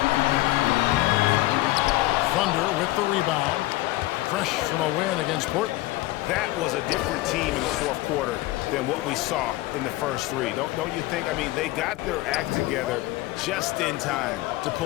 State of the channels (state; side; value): quieter; right; 18.2 dB